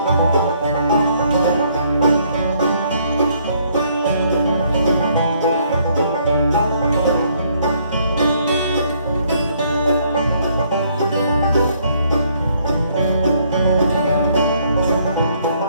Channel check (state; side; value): inverted; both; correlation -0.67